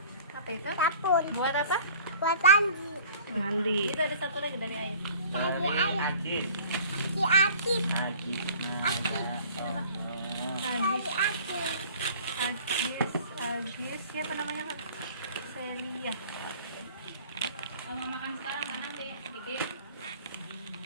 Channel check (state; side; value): inverted; both; correlation -0.48